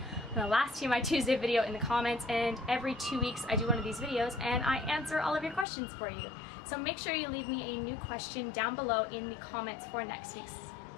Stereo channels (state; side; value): drops out; right; at 5.7 s